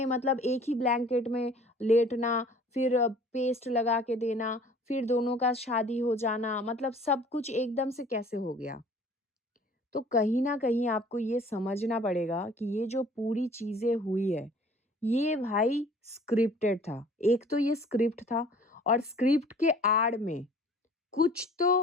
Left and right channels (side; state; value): both; normal; correlation 0.51